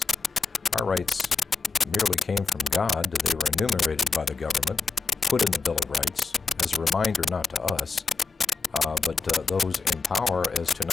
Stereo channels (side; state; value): right; quieter; 4.7 dB